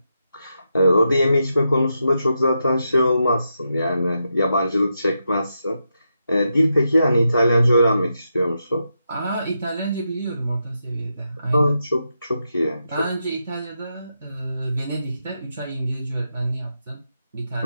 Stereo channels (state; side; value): inverted; both; correlation -0.85